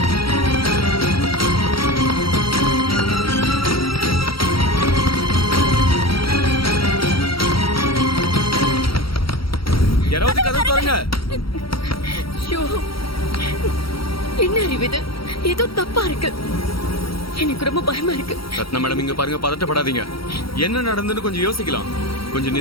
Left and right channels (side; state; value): right; late; 0.75 ms